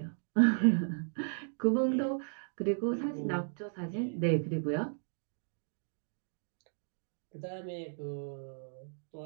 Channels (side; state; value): left; silent; digital silence